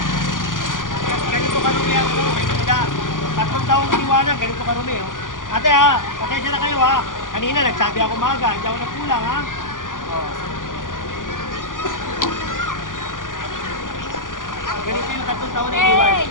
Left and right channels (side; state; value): right; late; 0.89 ms